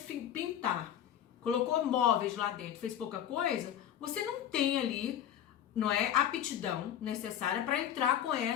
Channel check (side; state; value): right; quieter; 10.4 dB